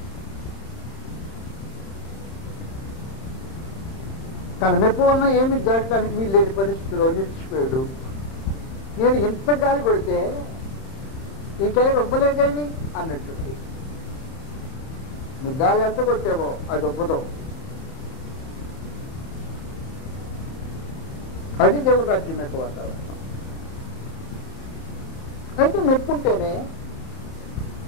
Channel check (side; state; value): right; late; 31 ms